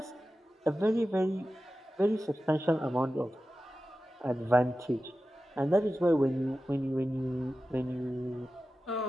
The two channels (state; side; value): normal; both; correlation 0.94